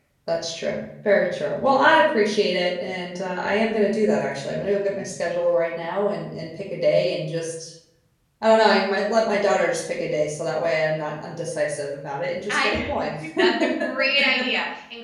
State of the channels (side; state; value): both; identical; correlation 1.00